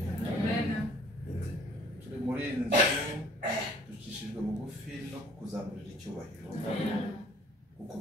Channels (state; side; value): normal; both; correlation 0.56